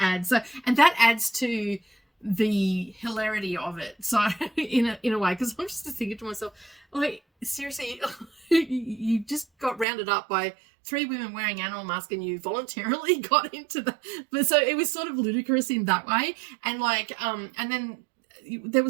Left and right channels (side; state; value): left; drops out; at 9.9 s